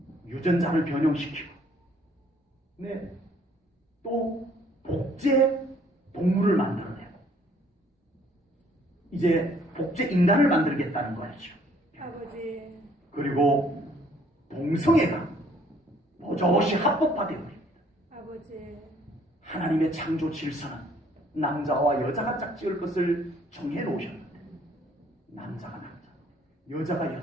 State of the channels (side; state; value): both; normal; correlation 0.62